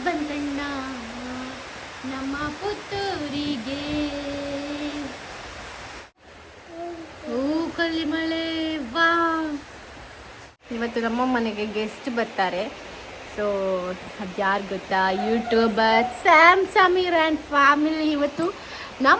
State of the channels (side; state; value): both; identical; correlation 1.00